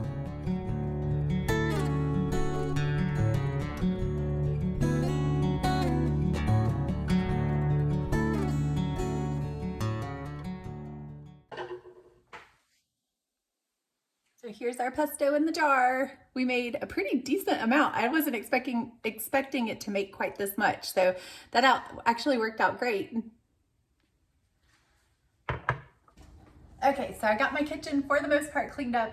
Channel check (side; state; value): both; identical; correlation 1.00